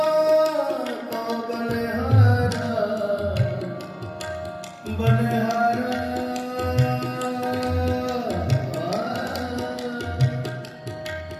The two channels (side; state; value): both; identical; correlation 1.00